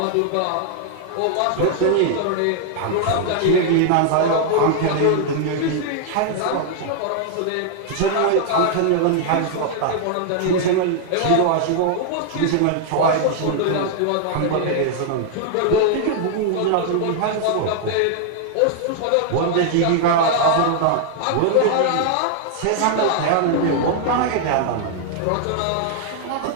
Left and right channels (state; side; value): different; both; correlation 0.00